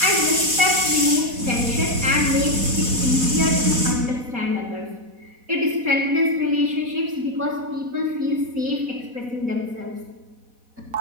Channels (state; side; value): late; left; 4.1 ms